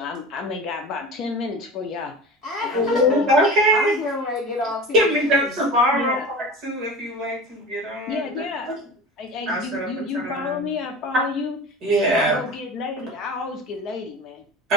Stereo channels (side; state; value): both; normal; correlation 0.34